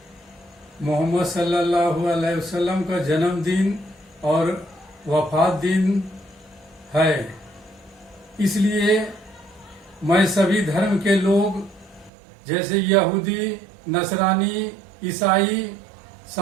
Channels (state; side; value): drops out; left; at 12.1 s